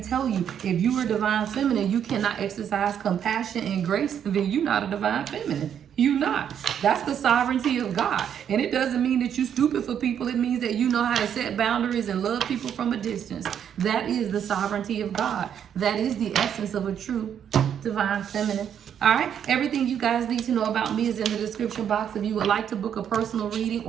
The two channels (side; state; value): left; quieter; 8.8 dB